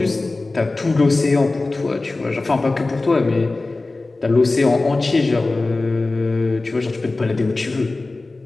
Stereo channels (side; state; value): right; quieter; 3.2 dB